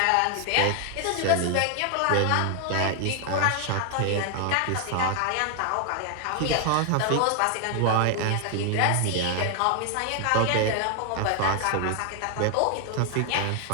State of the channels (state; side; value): different; both; correlation 0.00